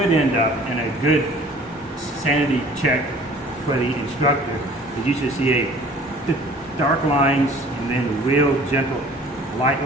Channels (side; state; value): both; normal; correlation 0.50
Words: end up in a good sanity check for the instructor is you should see a dark lines and then real gentle light